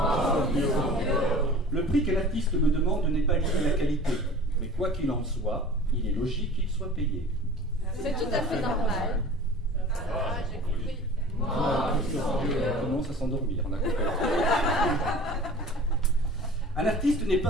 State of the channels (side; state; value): both; normal; correlation 0.42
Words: Le prix que l'artiste me demande n'est pas lié à la qualité. Mais quoi qu'il en soit, il est logique qu'il soit payé. C'est tout à fait normal. Ça va, j'ai compris. On commence à s'endormir, on a compris. Un artiste n'est